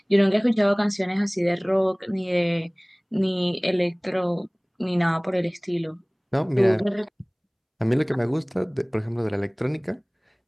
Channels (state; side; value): identical; both; correlation 1.00